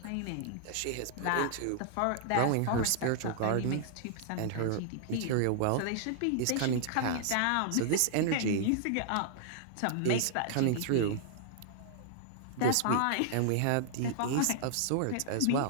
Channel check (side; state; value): both; different; correlation -0.01